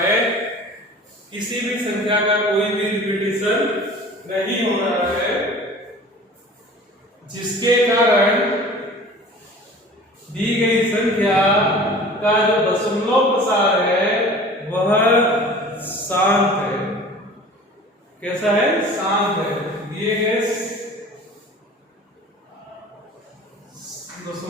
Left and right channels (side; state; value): both; normal; correlation 0.43